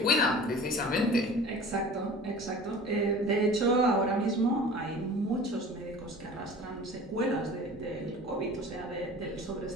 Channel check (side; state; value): both; normal; correlation 0.41